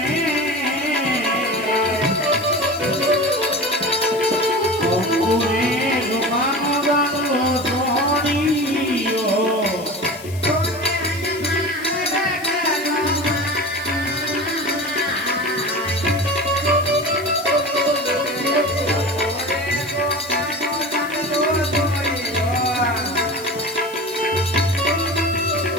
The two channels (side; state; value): left; noise; hiss, 17 dB below the sound